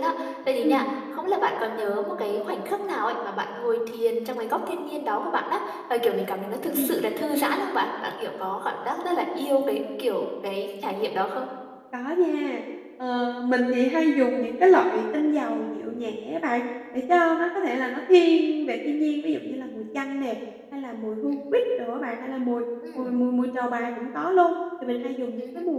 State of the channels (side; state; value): both; identical; correlation 1.00